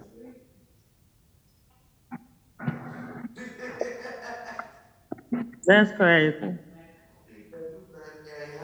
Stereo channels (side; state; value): both; identical; correlation 1.00